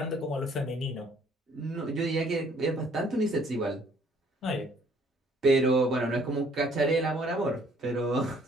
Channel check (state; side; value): normal; both; correlation 0.61